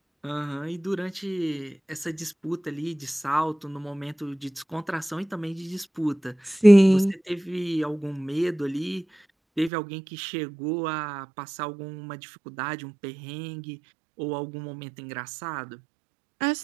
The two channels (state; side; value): drops out; left; at 9.7 s